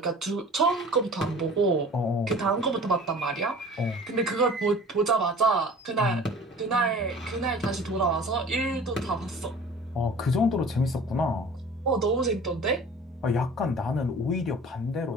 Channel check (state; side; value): normal; both; correlation 0.44